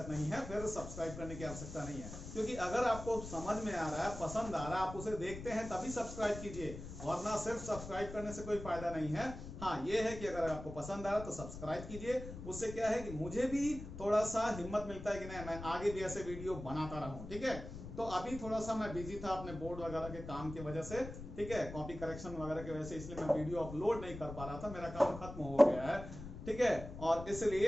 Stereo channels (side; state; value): left; noise; rumble, 10 dB below the sound